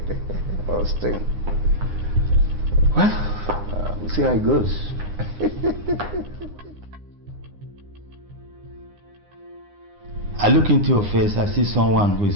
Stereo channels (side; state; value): left; late; 9.8 ms